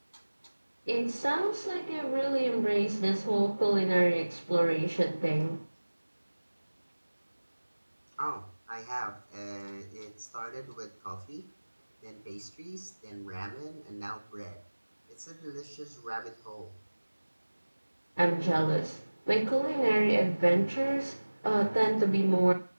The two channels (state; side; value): inverted; both; correlation -1.00